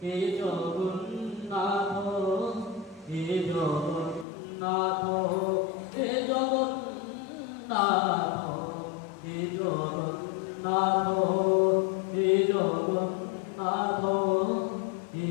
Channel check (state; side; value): drops out; right; at 4.2 s